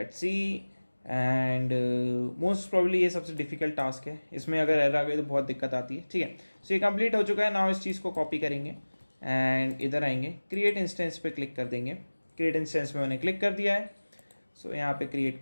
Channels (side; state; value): both; inverted; correlation -1.00